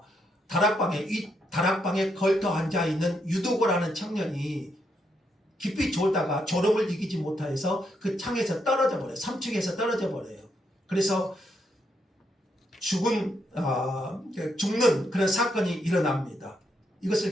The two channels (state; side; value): normal; both; correlation 0.78